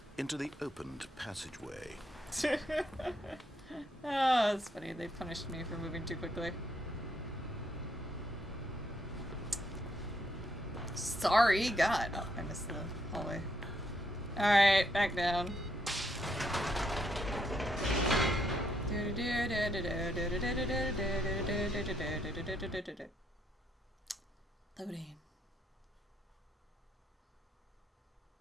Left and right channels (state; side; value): normal; both; correlation 0.75